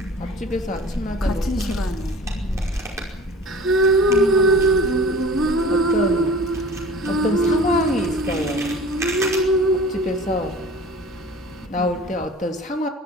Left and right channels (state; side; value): normal; both; correlation 0.41